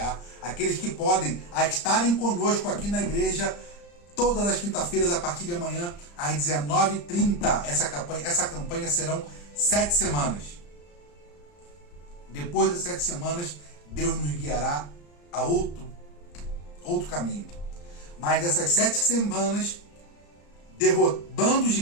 aqueles que podem a estarem conosco aqui na igreja todas as quinta-feiras a partir de amanhã às 19h30. Essa campanha serão 7 semanas. Depois das 7 semanas, Deus nos guiará a outro caminho. Mas dessas 7 semanas, derrotando o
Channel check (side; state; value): right; late; 35 ms